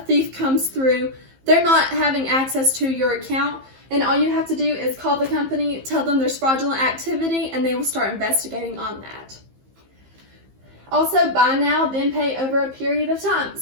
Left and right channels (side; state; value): left; late; 15 ms